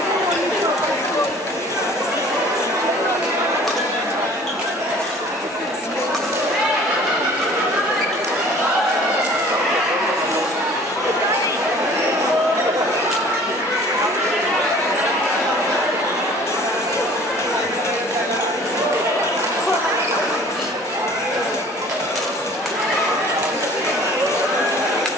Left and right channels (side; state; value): both; normal; correlation 0.50